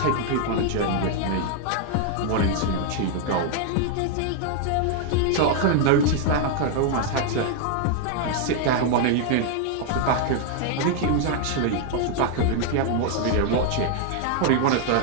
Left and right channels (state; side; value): different; both; correlation 0.00